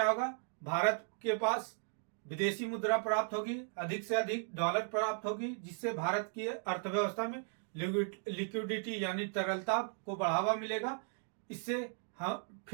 होगा? भारत के पास विदेशी मुद्रा प्राप्त होगी, अधिक से अधिक डॉलर प्राप्त होगी, जिससे भारत की अर्थव्यवस्था में लिक्विडिटी यानी तरलता को बढ़ावा मिलेगा। इससे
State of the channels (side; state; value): left; silent; 53 dB below the other